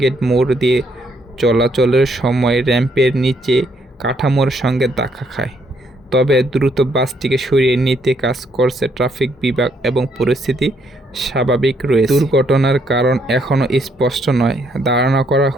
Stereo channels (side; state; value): both; normal; correlation 0.72